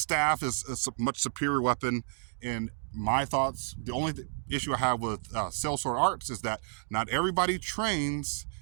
is a much superior weapon. In my thoughts, the only issue I have with Sellsword arts is that not everybody trains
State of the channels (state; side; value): silent; left; digital silence